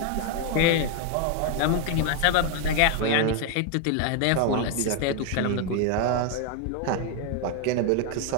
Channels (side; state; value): both; different; correlation 0.01